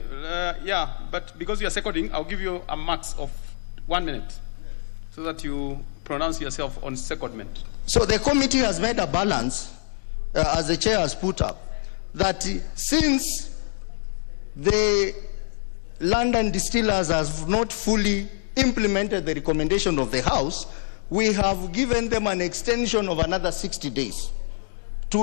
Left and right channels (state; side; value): silent; right; digital silence